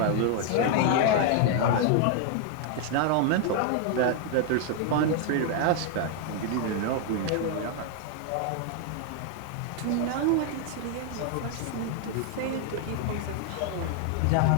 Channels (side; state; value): both; different; correlation 0.00